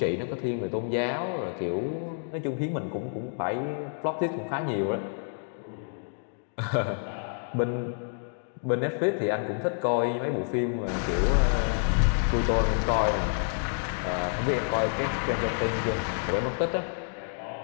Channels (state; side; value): silent; right; digital silence